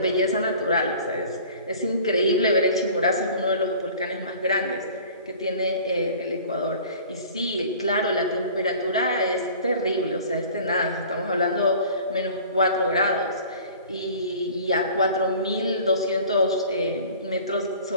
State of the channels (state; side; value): inverted; both; correlation -0.45